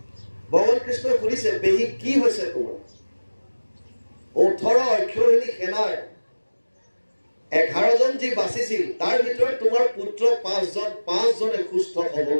ভগৱান কৃষ্ণই সুধিছে, পেহী কি হৈছে তোমাৰ? 18 অক্ষৌহিণী সেনাৰ 11 জন যি বাচিছিল, তাৰ ভিতৰত তোমাৰ পুত্ৰ 5জনে সুস্থ সবল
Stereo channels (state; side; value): inverted; both; correlation -1.00